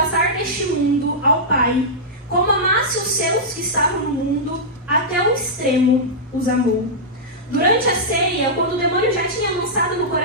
deste mundo ao Pai, como amasse os seus que estavam no mundo, até o extremo os amou. Durante a ceia, quando o demônio já tinha lançado no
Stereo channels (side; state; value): both; normal; correlation -0.11